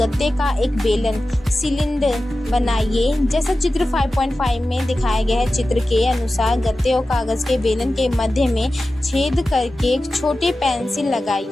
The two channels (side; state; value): both; normal; correlation 0.94